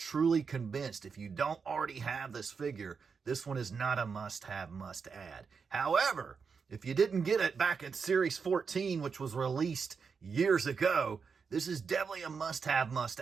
convinced. If you don't already have this figure, this one is not a must-have, must-add. However, if you didn't get it back in Series 14, which was released years ago, this is definitely a must-have,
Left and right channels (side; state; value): left; quieter; 5.7 dB